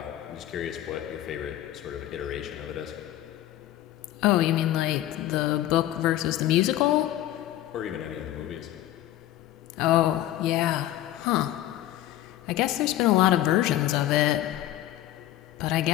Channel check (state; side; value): quieter; right; 13.9 dB